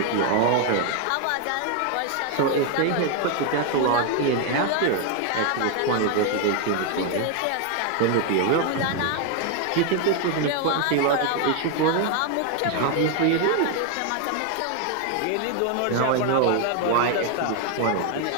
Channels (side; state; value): both; different; correlation 0.01